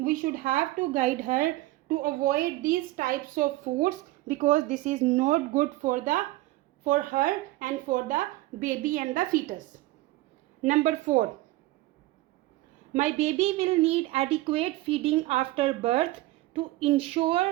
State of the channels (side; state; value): left; quieter; 18.2 dB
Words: should have to guide her to avoid this types of foods because this is not good for her and for the baby and the fetus. Number 4, my baby will need adequate feeding after birth to ensure